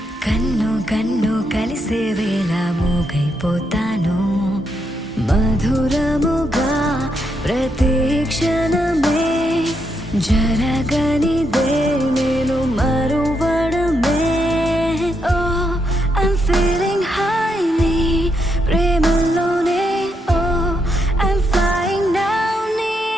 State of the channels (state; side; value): normal; both; correlation 0.80